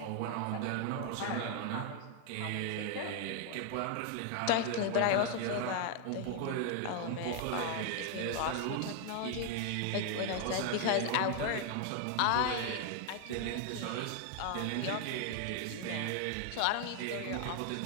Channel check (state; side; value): different; both; correlation 0.00